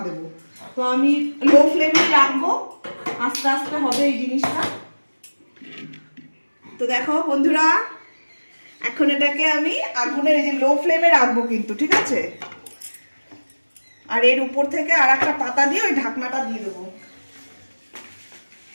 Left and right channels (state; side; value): inverted; both; correlation -1.00